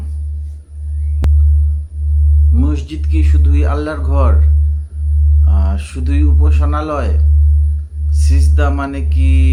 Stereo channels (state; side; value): identical; both; correlation 1.00